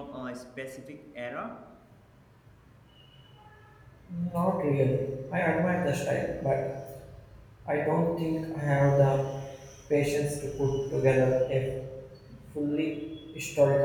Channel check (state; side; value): identical; both; correlation 1.00